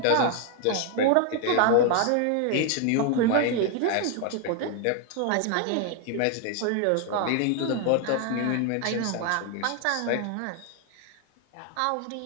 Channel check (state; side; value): different; both; correlation 0.00